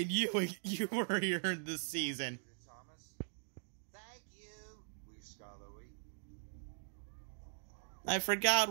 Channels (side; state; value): left; silent; digital silence